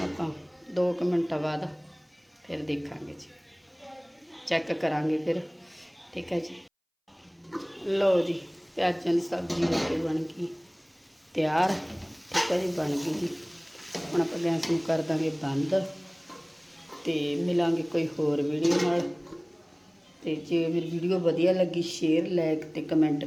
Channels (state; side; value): identical; both; correlation 1.00